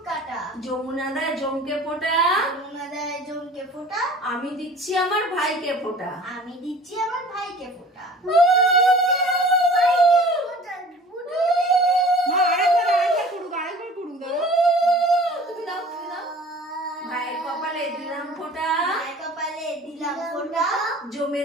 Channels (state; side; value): normal; both; correlation 0.45